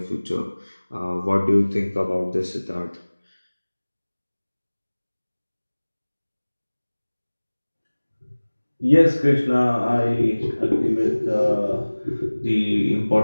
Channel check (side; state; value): both; inverted; correlation -1.00